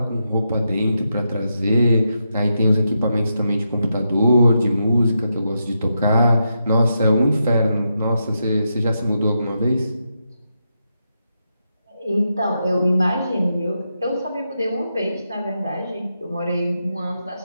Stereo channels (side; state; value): both; inverted; correlation -0.85